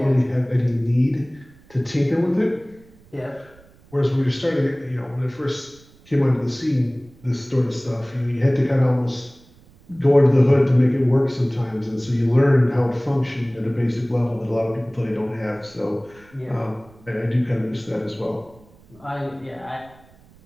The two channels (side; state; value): right; noise; rumble, 27 dB below the sound